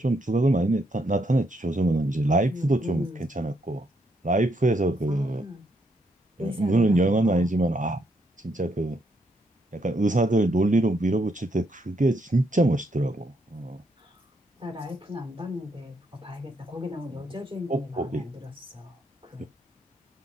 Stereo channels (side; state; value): both; normal; correlation 0.75